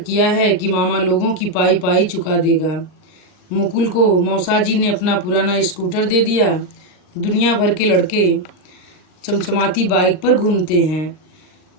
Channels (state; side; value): late; right; 39 ms